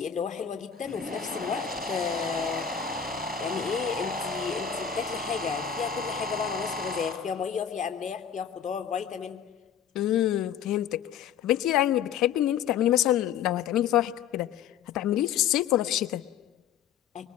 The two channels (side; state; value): right; quieter; 8.5 dB